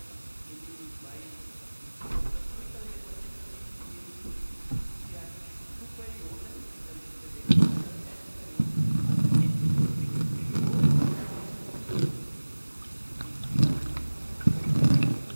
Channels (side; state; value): both; inverted; correlation -1.00